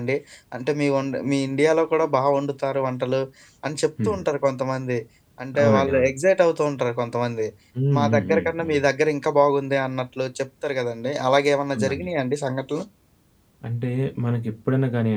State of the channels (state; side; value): identical; both; correlation 1.00